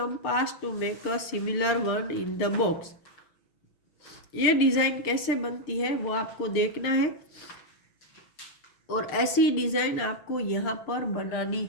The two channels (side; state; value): right; late; 6.6 ms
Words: to make a similar one in the box. ये डिज़ाइन कैसे बनती है वो आपको देखना है, और ऐसी डिज़ाइन आपको यहाँ पर बनानी